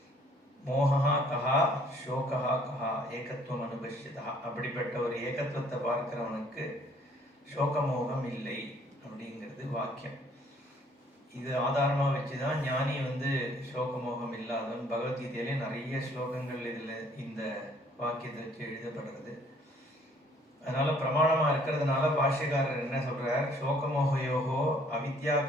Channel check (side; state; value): both; normal; correlation 0.60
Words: மோகா கஹா சோகா கஹா ஏகத்துவம் அனுபஷ்யதா, அப்படிப்பட்ட ஒரு ஏகத்துவத்தை பார்க்கிறவனுக்கு சோகமோகம் இல்லை அப்படிங்கிறது வாக்கியம். இது ஆதாரமா வச்சுதான் ஞானி வந்து சோகமோகம் இல்லாதவன். பகவத்கீதையிலே நிறைய ஸ்லோகங்கள் இதுல இந்த வாக்கியத்தை வச்சு எழுதப்படுறது. அதனால பிரமாணமா இருக்கிறதுனால பாஷ்யக்காரர் என்ன சொல்றார், சோகமோகயோகோ அவித்யா